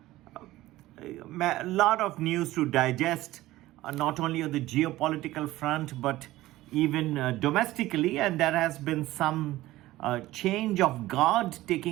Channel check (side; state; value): left; quieter; 16.7 dB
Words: a lot of news to digest, not only on the geopolitical front, but even domestically. And there has been some change of guard